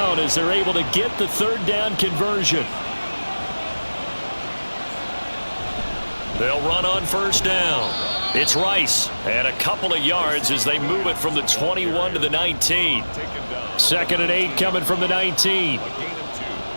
as they're able to get the 3rd down conversion. They'll run on 1st down. It's Rice, and a couple of yards as they move it from the 21 to the 19. 2nd and 8 coming from the 19.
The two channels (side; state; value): both; inverted; correlation -1.00